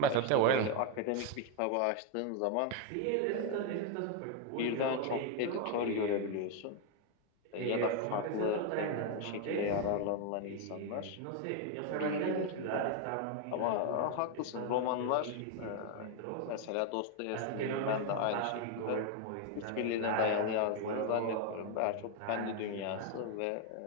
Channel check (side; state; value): both; different; correlation 0.01